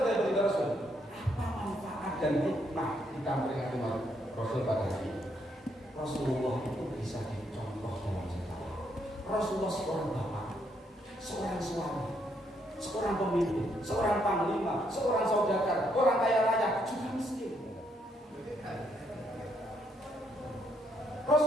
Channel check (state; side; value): normal; both; correlation 0.74